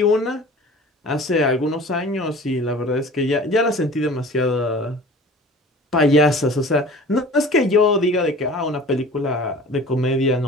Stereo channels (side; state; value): both; normal; correlation 0.43